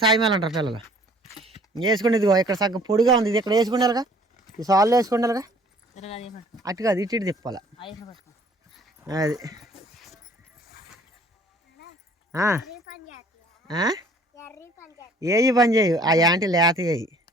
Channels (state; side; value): normal; both; correlation 0.56